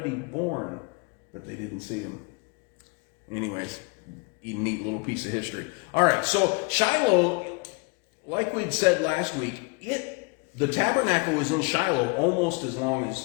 born, but they didn't see him. Anyways, a neat little piece of history. All right, so Shiloh, like we'd said last week, the tabernacle was in Shiloh almost as long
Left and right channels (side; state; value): right; quieter; 30.1 dB